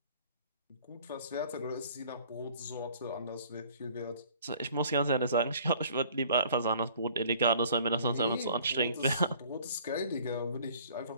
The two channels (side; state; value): both; inverted; correlation -0.53